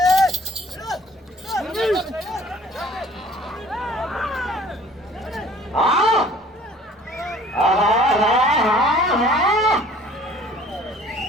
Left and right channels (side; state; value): both; normal; correlation 0.52